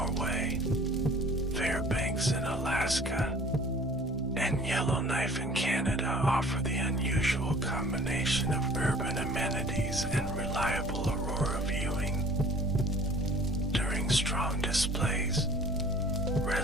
Fairbanks in Alaska, and Yellowknife in Canada offer the unusual combination of urban amenities and reliable aurora viewing. During strong displays,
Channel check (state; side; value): normal; both; correlation 0.49